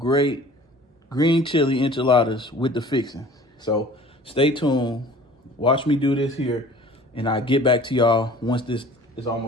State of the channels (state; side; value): normal; both; correlation 0.47